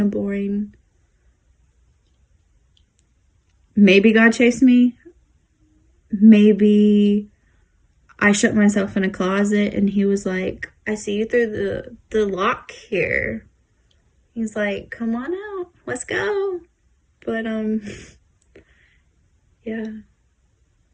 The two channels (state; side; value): identical; both; correlation 1.00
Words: of boring. Maybe God chased me. Maybe I shut myself in a closet, and he was like, I see you through the lock here. He's like, come on out, let's go. But yeah,